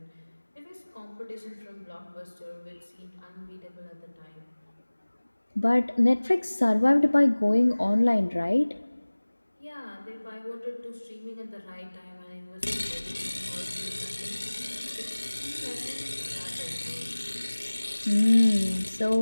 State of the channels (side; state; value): both; inverted; correlation -1.00